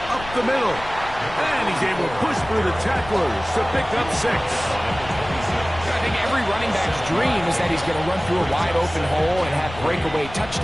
up the middle. And he He's able to push through the tacklers to pick up 6. I think every running back's dream is that he's going to run through a wide open hole and have breakaway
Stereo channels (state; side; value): noise; left; rumble, 14 dB below the sound